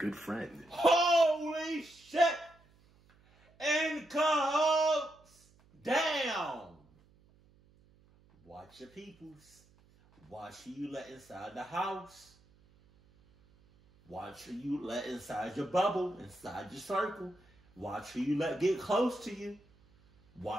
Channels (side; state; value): right; noise; hum, 30 dB below the sound